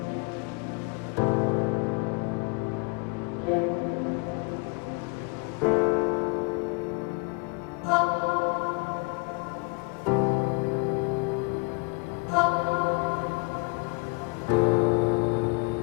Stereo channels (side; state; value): right; quieter; 32.0 dB